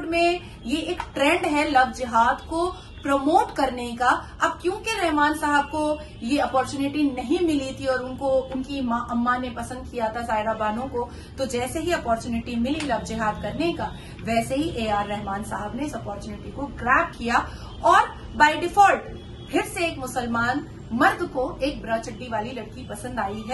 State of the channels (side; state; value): both; identical; correlation 1.00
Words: में ये एक ट्रेंड है लव जिहाद को प्रमोट करने का। अब क्योंकि रहमान साहब को ये अपॉर्चुनिटी नहीं मिली थी और उनको उनकी अम्मा ने पसंद किया था सायरा बानो को, तो जैसे ही अपॉर्चुनिटी मिली लव जिहाद करने का, वैसे ही ए.आर. रहमान साहब ने इस अपॉर्चुनिटी को ग्रैब किया और बाय डिफॉल्ट फिर से एक मुसलमान मर्द को एक ब्रा चड्डी वाली लड़की पसंद आई